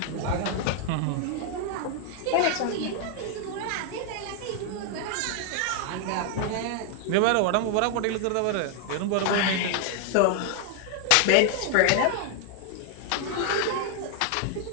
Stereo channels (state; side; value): different; both; correlation 0.00